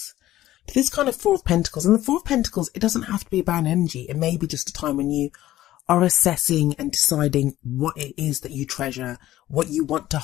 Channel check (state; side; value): quieter; right; 14.5 dB